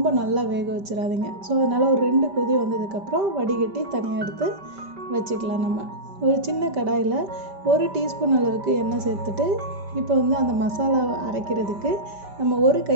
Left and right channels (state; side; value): late; left; 5.1 ms